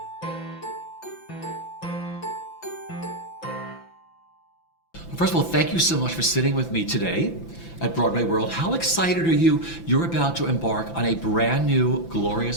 First of all, thank you so much for sitting with me today at BroadwayWorld. How excited are you? You're about to embark on a brand new, glorious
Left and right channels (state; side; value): late; right; 5.9 ms